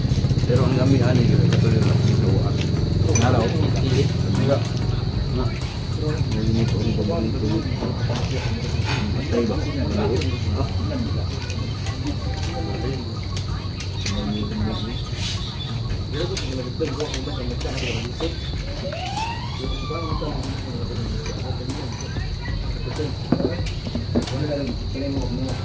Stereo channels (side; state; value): both; identical; correlation 1.00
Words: Pero ang gami ani gyud katuloy lang ito. Nalaw. Diga. Patay ba?